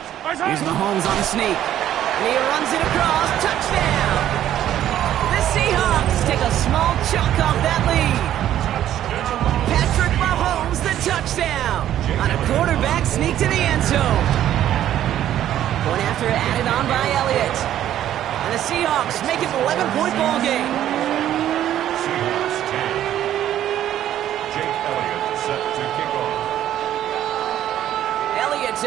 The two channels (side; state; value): left; quieter; 11.7 dB